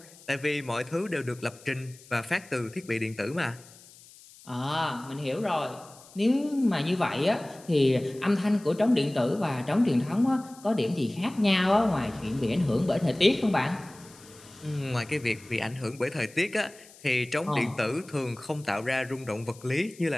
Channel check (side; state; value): left; noise; hiss, 22 dB below the sound